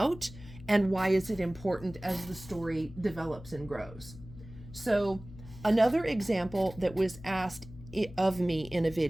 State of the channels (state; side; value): noise; left; hum, 17 dB below the sound